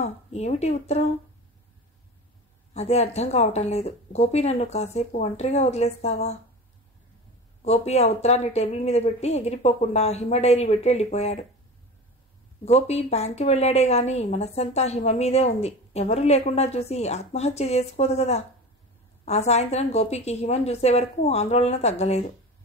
ఏమిటి ఉత్తరం? అదే అర్థం కావటం లేదు. గోపి, నన్ను కాసేపు ఒంటరిగా వదిలేస్తావా? గోపి ఆ ఉత్తరాన్ని టేబుల్ మీద పెట్టి ఎగిరిపోకుండా హిమ డైరీ పెట్టి వెళ్ళిపోయాడు. గోపి బ్యాంక్కి వెళ్ళాడే గాని మనస్సంతా హిమ మీదే ఉంది. ఎవరూ లేకుండా చూసి ఆత్మహత్య చేసుకోదు కదా. ఆ సాయంత్రం గోపికి హిమను చూసే వరకు ఆందోళన తగ్గలేదు.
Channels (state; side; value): normal; both; correlation 0.31